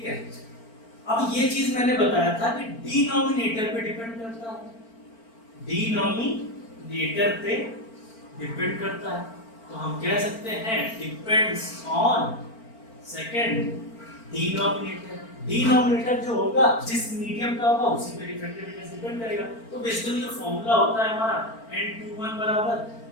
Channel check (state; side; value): late; right; 4.4 ms